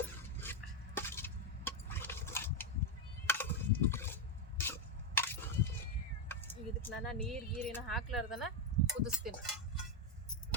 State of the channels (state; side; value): normal; both; correlation 0.04